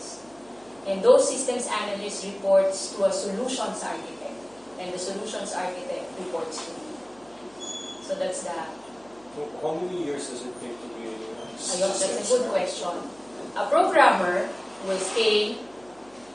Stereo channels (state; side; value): noise; right; hum, 28 dB below the sound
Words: And those systems analysts reports to a solutions architect, and the solutions architect reports to me. So that's that. How many years does it take to be That's a good question. A programmer will stay